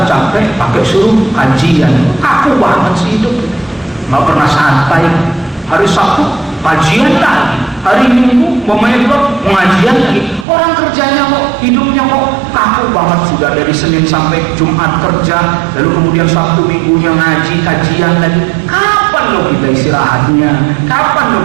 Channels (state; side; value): drops out; left; at 10.5 s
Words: capek, pakai suruh kajian, kaku banget sih hidup. Nggak pernah santai. Hari Sabtu kajian lagi, hari Minggu pemain klub pengajian lagi. Orang kerjanya kok, hidupnya kok kaku banget, sudah dari Senin sampai Jumat kerja, lalu kemudian Sabtu Minggunya ngaji, kajian lagi. Kapan lo kita istirahatnya? Kapan lo